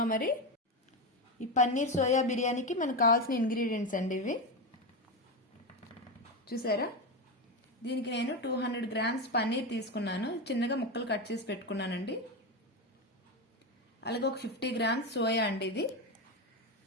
మరి ఈ పన్నీర్ సోయా బిర్యానీకి మనకు కావాల్సిన ఇంగ్రీడియంట్స్ అండి ఇవి చూసారా. దీనికి నేను 200 గ్రామ్స్ పన్నీర్ తీసుకున్నాను, చిన్నగా ముక్కలు కట్ చేసి పెట్టుకున్నానండి. అలాగే ఒక 50 గ్రామ్స్ సోయా అండి ఇది.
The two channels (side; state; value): both; normal; correlation 0.14